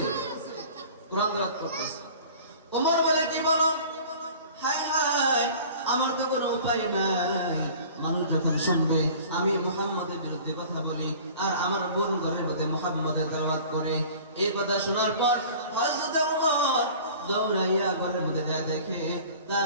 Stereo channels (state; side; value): inverted; both; correlation -0.44